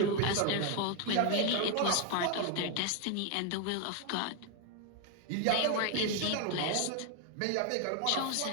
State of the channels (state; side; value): different; both; correlation 0.01